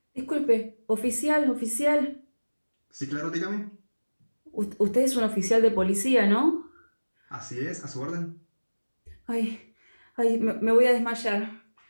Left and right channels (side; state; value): both; inverted; correlation -1.00